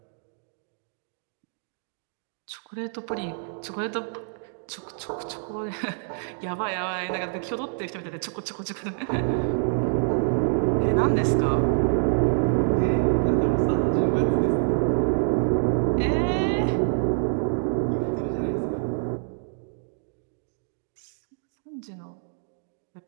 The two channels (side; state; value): left; silent; digital silence